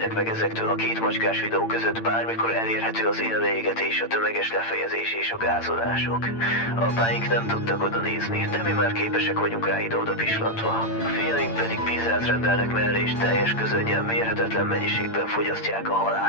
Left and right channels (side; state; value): right; late; 8.8 ms